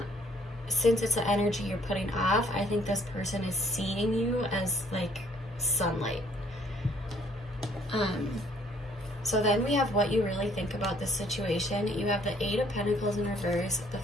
since it's the energy you're putting off, I think this person is seeing you as like sunlight. So then we have what you really think about this situation. You have the 8 of Pentacles in reverse, the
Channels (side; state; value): both; normal; correlation 0.63